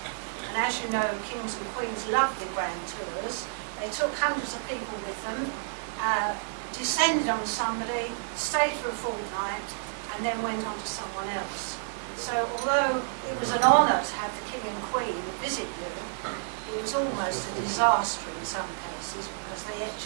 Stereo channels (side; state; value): left; silent; 58 dB below the other